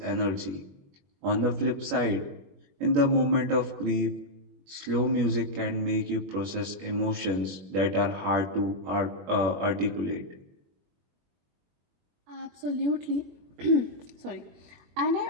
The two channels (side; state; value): left; late; 21 ms